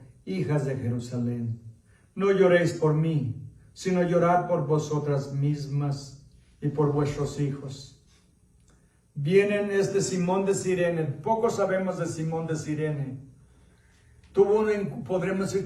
hijas de Jerusalén, no lloréis por mí, sino llorad por vosotras mismas y por vuestros hijos. Vienen Simón de Cirene. Poco sabemos de Simón de Cirene. Podremos decir,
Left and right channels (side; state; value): both; identical; correlation 1.00